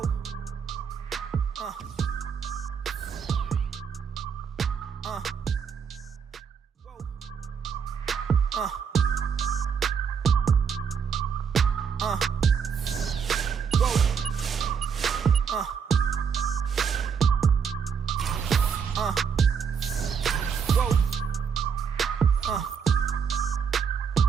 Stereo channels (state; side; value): quieter; left; 6.7 dB